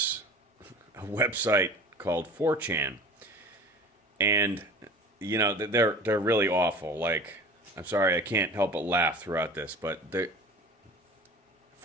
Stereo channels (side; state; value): both; normal; correlation 0.40